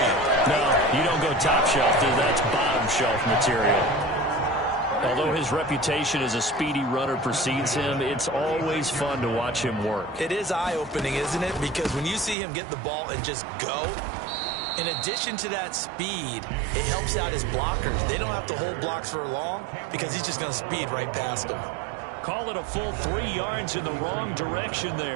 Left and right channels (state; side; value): drops out; left; at 12.4 s